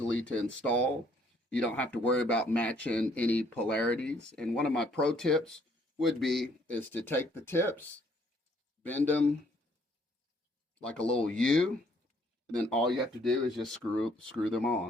to install. You don't have to worry about matching any polarities. And one of my pro tips would be is to take the tips, bend them like a little U, and then all you have to do is just screw them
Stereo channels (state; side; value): normal; both; correlation 0.65